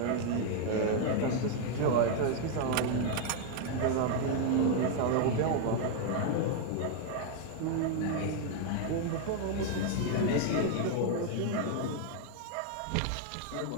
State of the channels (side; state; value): both; different; correlation 0.00